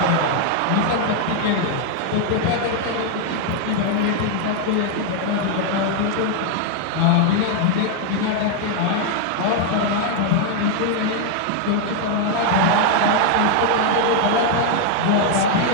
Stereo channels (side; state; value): both; different; correlation 0.00